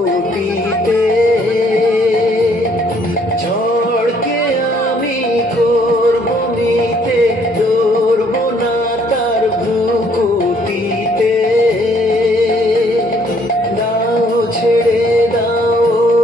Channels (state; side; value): normal; both; correlation 0.64